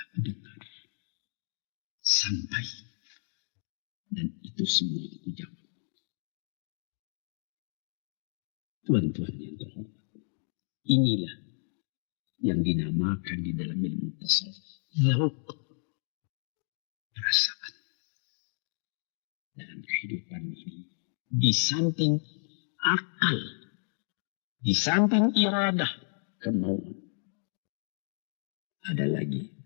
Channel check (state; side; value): silent; right; digital silence